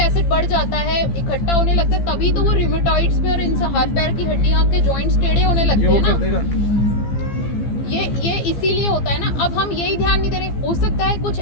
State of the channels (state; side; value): late; right; 15 ms